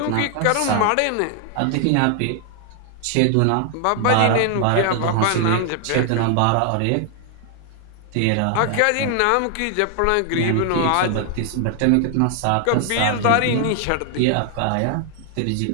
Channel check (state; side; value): different; both; correlation 0.00